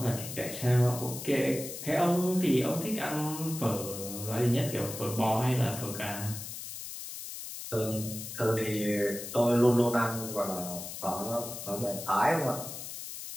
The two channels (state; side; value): noise; left; hiss, 9 dB below the sound